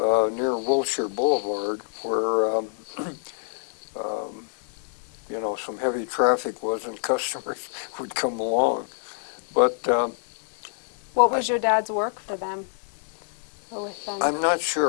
near Wilshire Boulevard, where um, you know, some heavy traffic was and customers would come along. But What was your dad's work for them? Or with them? I'm not sure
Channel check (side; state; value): right; silent; digital silence